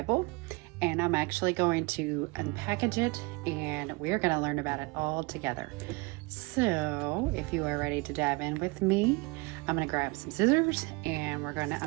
and I'm actually going to unpackage it, and we're going to learn about it all together. So, if you are ready to dive in with me, I'm going to grab some scissors, and we're going to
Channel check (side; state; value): left; quieter; 26.8 dB